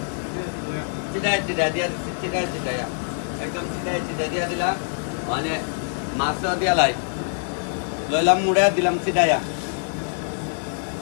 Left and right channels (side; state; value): right; silent; 61 dB below the other